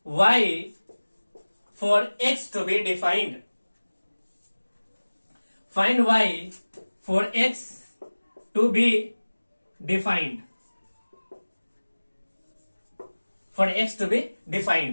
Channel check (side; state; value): both; inverted; correlation -1.00